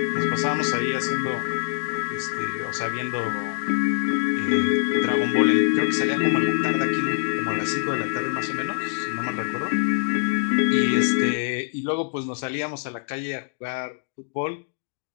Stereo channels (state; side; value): silent; right; digital silence